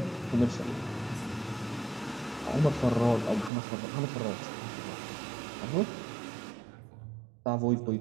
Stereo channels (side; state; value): left; drops out; at 3.5 s